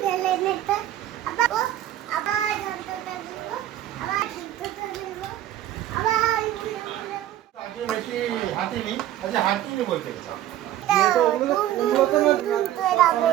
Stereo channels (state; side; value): quieter; left; 12.8 dB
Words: ছেলে মেয়েটা আবার ধনততে বলবো আবার ধনততে বলবো আবার আগে বেশি হাঁটিনি, আচ্ছা হাঁটিনি বলতে